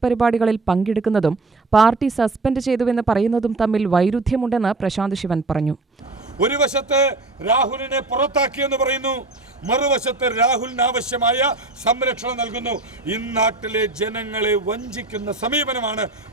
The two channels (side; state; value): left; quieter; 3.2 dB